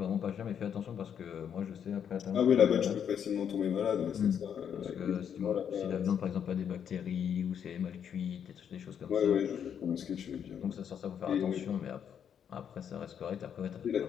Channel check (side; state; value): right; quieter; 8.3 dB